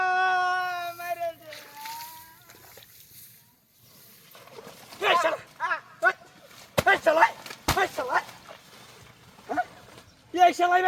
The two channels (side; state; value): both; identical; correlation 1.00